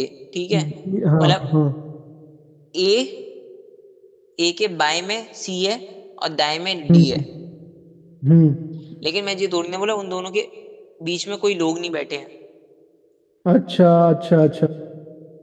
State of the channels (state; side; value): identical; both; correlation 1.00